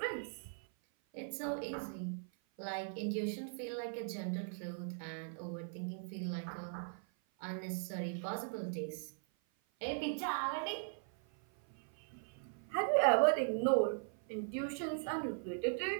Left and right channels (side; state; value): left; silent; 51 dB below the other